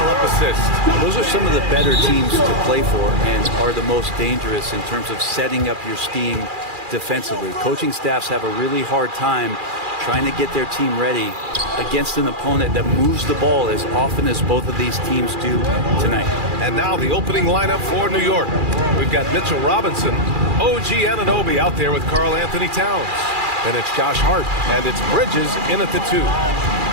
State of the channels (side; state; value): left; late; 2.4 ms